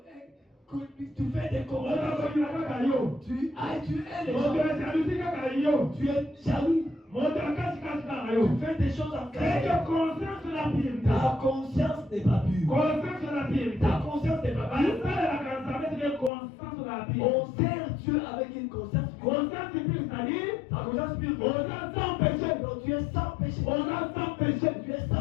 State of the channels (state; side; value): drops out; right; at 16.3 s